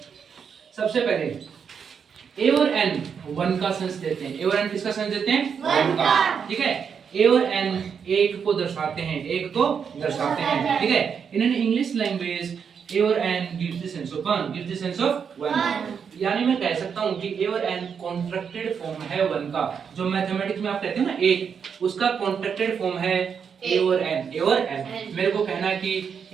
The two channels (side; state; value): left; quieter; 6.8 dB